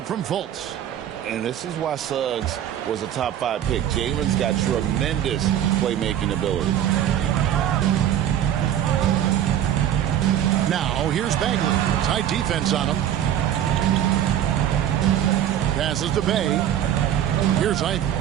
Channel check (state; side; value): quieter; left; 10.8 dB